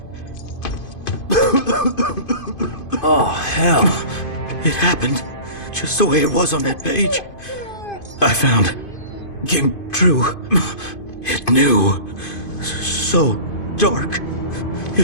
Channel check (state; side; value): late; right; 2.5 ms